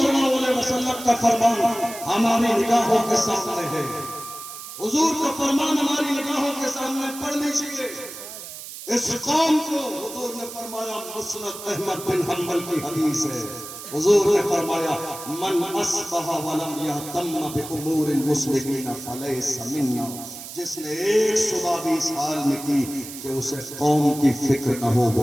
اللہ علیہ وسلم کا فرمان ہماری نگاہوں کے سامنے ہے. حضور کا فرمان ہماری نگاہوں کے سامنے پڑھ لیجئے. اس قوم کو حضور نے فرمایا, مسند احمد بن حنبل کی حدیث ہے, حضور نے فرمایا من اصبح ولم یہتم بامور المسلمین فلیس منا. جس نے ایک صبح بھی اس حال میں کی کہ اسے قوم کی فکر نہ ہو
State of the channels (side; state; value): right; noise; hiss, 12 dB below the sound